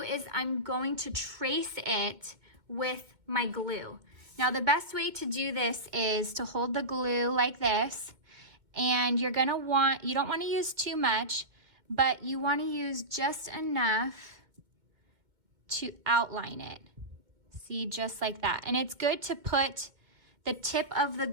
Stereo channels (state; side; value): late; left; 2.1 ms